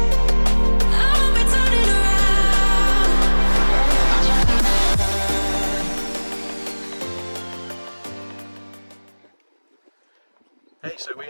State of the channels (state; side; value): inverted; both; correlation -1.00